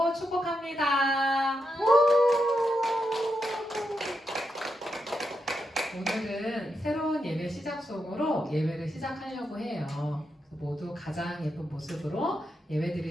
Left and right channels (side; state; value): both; normal; correlation 0.84